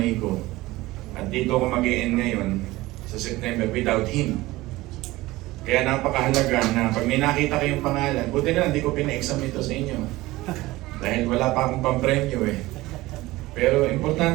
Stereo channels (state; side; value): quieter; left; 18.9 dB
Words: ko. At dito ako mag-i-end ngayon sa September without him. Kaya napakahalaga na pag may nakita kayong pangalan, buti na hindi ko pina-exam ito sa inyo. Dahil wala pa akong pampremyo eh. Pero